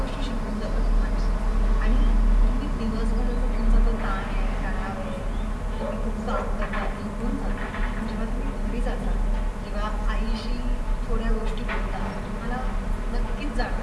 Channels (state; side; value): identical; both; correlation 1.00